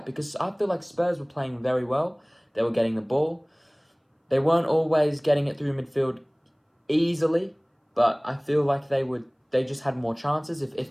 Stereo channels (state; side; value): identical; both; correlation 1.00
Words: because I feel like Spurs were playing very well. They were getting the ball. They weren't always getting it through midfield easily, but I feel like they just had more chances. If